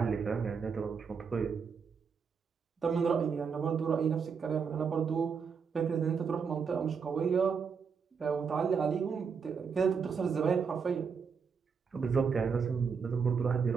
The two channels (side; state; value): left; quieter; 6.0 dB